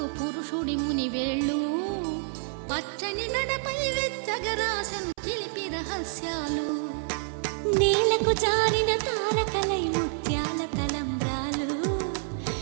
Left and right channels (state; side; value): silent; left; 57 dB below the other